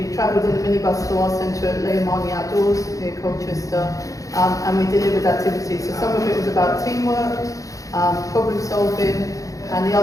travelled in a minibus to our centre at Leomani Outdoors near Colchester, and we delivered activities. So some of it was about teamwork, problem solving, and the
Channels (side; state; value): right; late; 0.16 ms